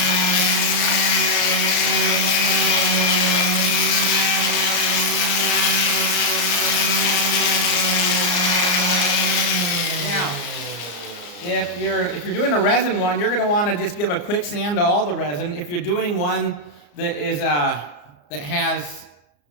If you're doing a resin one, you're going to want to just give a quick sand to all the resin. If you're doing one that is that has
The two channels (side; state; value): right; late; 34 ms